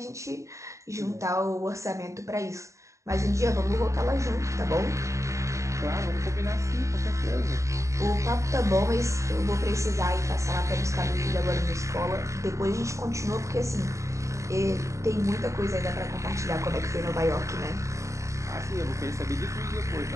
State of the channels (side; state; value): left; late; 0.15 ms